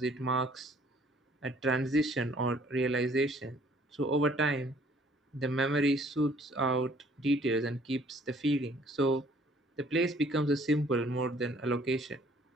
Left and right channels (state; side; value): normal; both; correlation 0.59